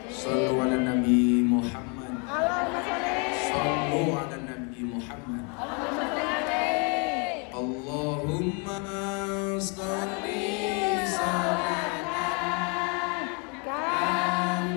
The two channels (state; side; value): quieter; right; 34.5 dB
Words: Shollu 'ala nabi Muhammad. Shollu 'ala nabi Muhammad. Allahumma sholli